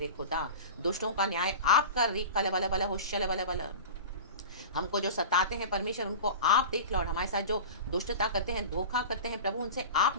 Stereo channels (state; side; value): inverted; both; correlation -0.32